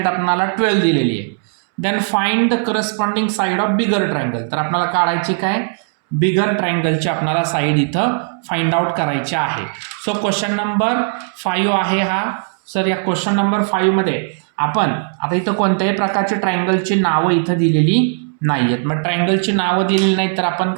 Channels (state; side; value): silent; left; 68 dB below the other